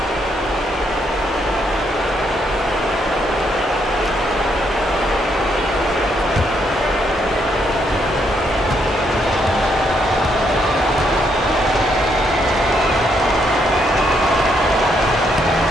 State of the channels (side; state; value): both; normal; correlation 0.75